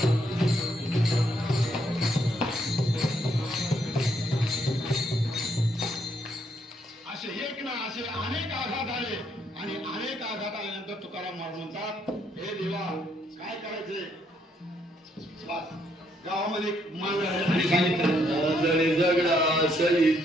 असे एक ना असे अनेक आघात आले आणि अनेक आघात आल्यानंतर तुकाराम महाराज म्हणतात हे देवा काय करायचे. गावामध्ये मान सांगितलं जगडा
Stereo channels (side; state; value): both; normal; correlation 0.72